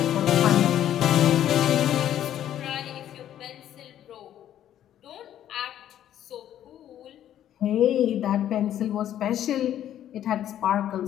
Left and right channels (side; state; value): right; quieter; 11.2 dB